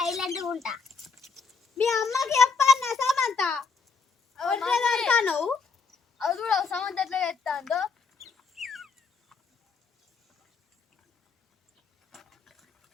గా ఉంటా. మీ అమ్మకి చెప్పన్నా సమంత అది కూడా సమంత ఎట్లా చేస్తాందో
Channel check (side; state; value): right; quieter; 5.0 dB